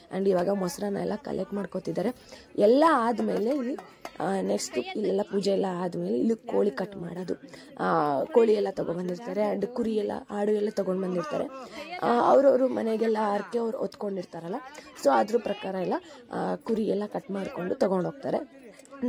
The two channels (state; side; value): identical; both; correlation 1.00